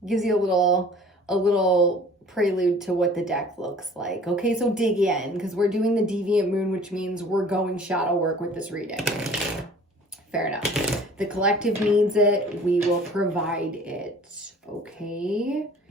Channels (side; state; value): both; normal; correlation 0.49